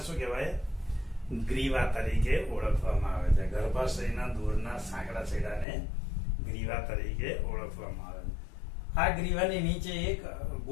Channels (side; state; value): right; drops out; at 5.7 s